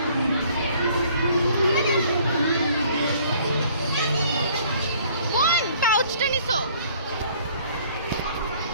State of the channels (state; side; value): inverted; both; correlation -0.58